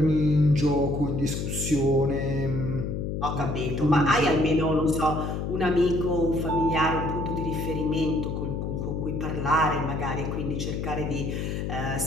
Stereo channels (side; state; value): left; noise; hum, 3 dB below the sound